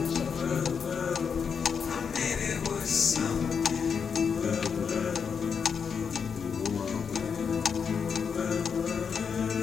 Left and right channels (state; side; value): quieter; right; 6.4 dB